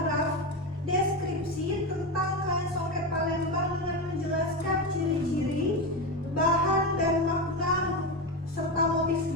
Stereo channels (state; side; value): normal; both; correlation 0.16